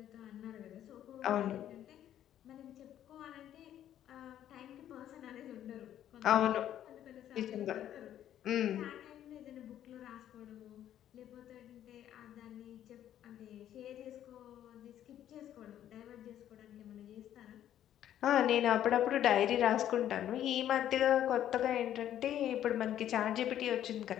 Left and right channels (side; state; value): right; quieter; 11.2 dB